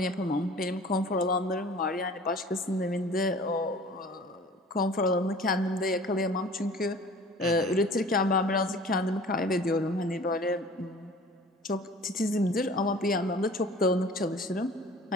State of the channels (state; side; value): normal; both; correlation 0.46